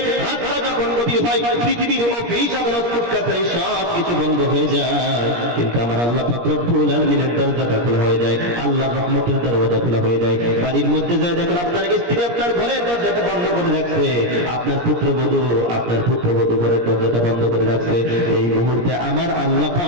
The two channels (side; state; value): left; late; 17 ms